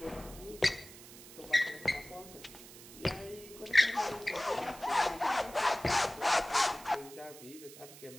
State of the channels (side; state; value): right; noise; hiss, 17 dB below the sound